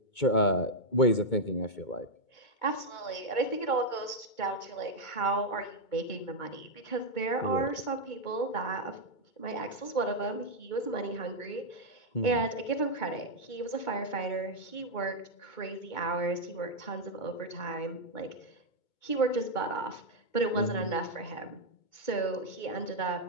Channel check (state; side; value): late; right; 2.2 ms